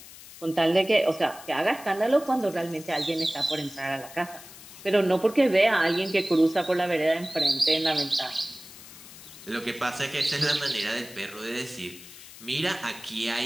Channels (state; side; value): noise; left; hiss, 17 dB below the sound